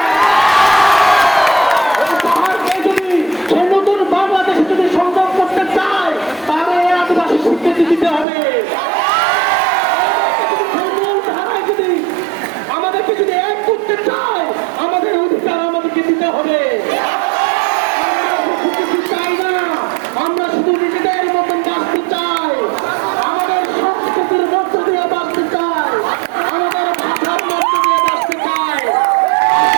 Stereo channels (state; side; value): drops out; left; at 8.2 s